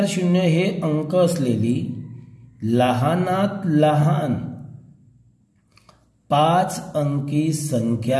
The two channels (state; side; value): identical; both; correlation 1.00